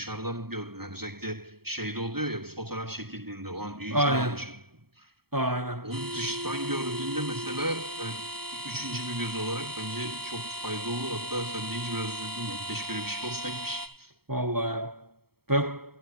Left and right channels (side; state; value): left; late; 0.95 ms